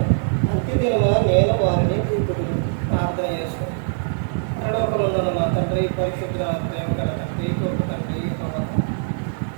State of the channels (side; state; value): left; silent; digital silence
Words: అంత్యదినమున నేను వారిని చూపుదును. ప్రార్థన చేసుకుని పరలోకమందున్న మా తండ్రి, పరిశుద్ధ ప్రేమ గల తండ్రి, గొప్ప తండ్రి,